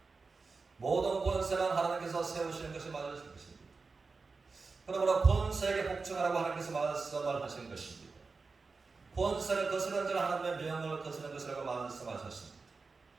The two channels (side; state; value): left; quieter; 4.3 dB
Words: 모든 권세는 하나님께서 세우시는 것이 맞으신 것입니다. 그러므로 권세에게 복종하라고 하나님께서 말씀을 하신 것입니다. 권세를 거스르는 자는 하나님의 명을 거스르는 것이라고 말씀하셨습니다.